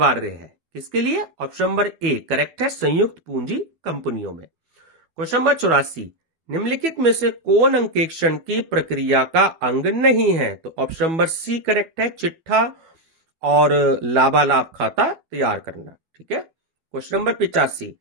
है किसके लिए। ऑप्शन नंबर ए करेक्ट है, संयुक्त पूंजी कंपनियों में। क्वेश्चन नंबर 84, निम्नलिखित में से कौन अंकेक्षण की प्रक्रिया का अंग नहीं है। तो ऑप्शन नंबर सी करेक्ट है, चिट्ठा और लाभालाभ खाता तैयार करना। ठीक है। क्वेश्चन नंबर 85,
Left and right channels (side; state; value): left; late; 12 ms